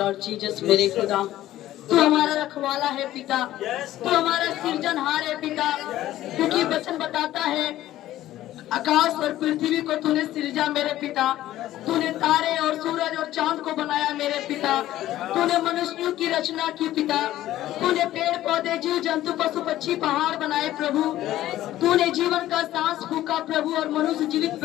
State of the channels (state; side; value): quieter; right; 14.1 dB